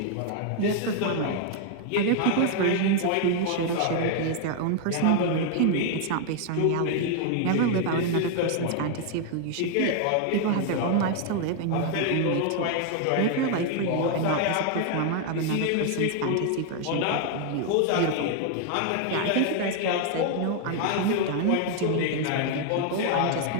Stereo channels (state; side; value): different; both; correlation 0.01